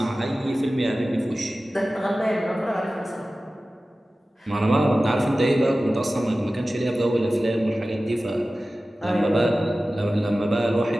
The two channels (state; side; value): normal; both; correlation 0.96